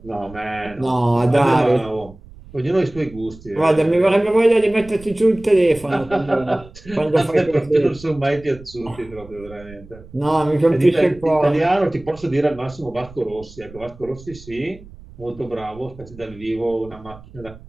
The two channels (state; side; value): noise; right; rumble, 20 dB below the sound